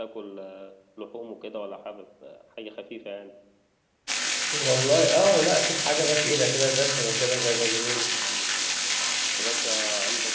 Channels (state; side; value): identical; both; correlation 1.00